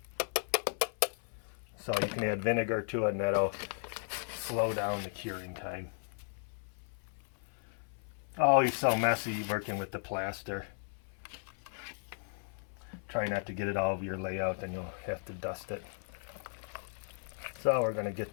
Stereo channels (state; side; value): silent; right; 54 dB below the other